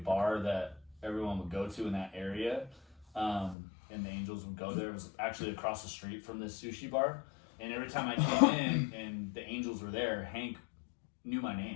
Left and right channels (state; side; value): drops out; right; at 3.6 s